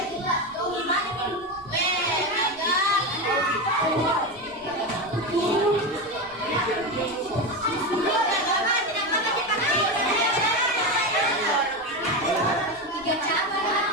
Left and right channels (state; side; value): normal; both; correlation 0.17